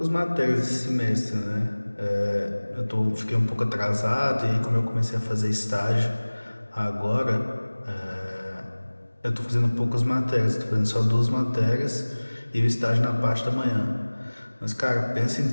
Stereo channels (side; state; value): both; inverted; correlation -1.00